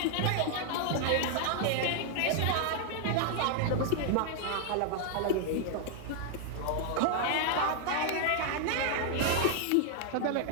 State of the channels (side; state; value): both; different; correlation 0.00